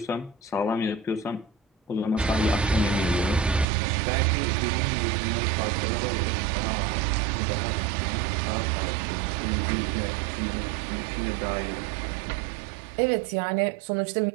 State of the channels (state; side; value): drops out; left; at 3.7 s